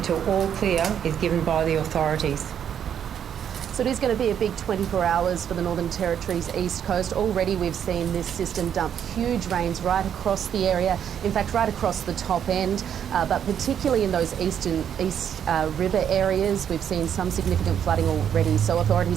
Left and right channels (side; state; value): left; quieter; 8.9 dB